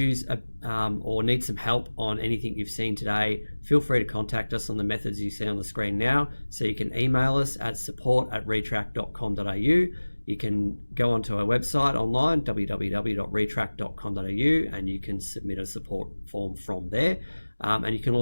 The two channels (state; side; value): inverted; both; correlation -1.00